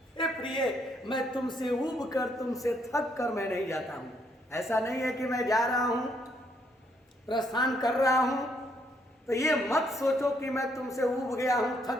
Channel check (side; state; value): both; normal; correlation 0.72